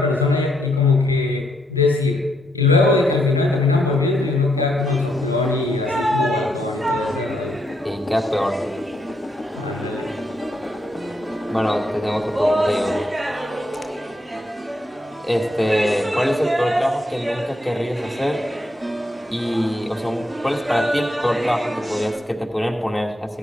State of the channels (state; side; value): normal; both; correlation 0.78